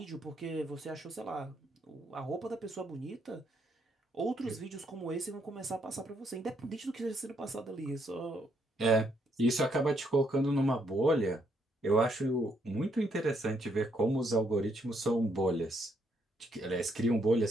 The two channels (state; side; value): normal; both; correlation 0.74